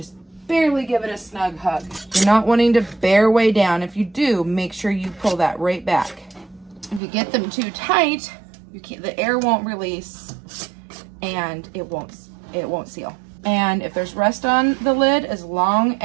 barely give it a snug hug. You're not wanting to bear way down. If you do, make sure you pull that right back. If you get them too tight, the air won't release and it won't seal. And if there's rust on the lid, as long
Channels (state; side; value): drops out; left; at 7.0 s